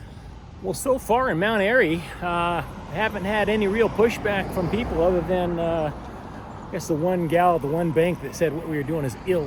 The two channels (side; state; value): both; identical; correlation 1.00